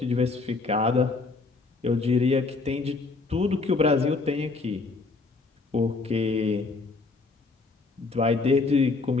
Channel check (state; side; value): quieter; right; 3.8 dB